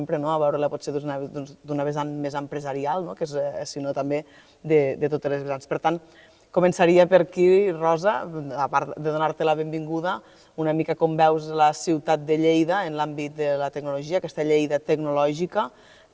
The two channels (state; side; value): identical; both; correlation 1.00